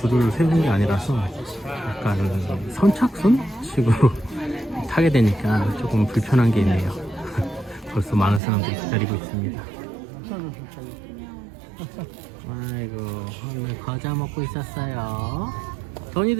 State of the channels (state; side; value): drops out; left; at 8.4 s